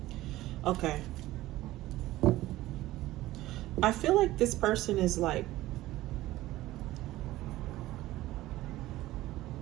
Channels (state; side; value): quieter; left; 16.5 dB